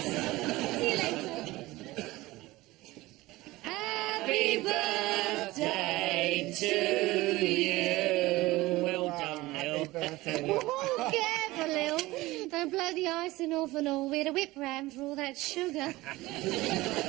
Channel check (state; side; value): quieter; left; 19.3 dB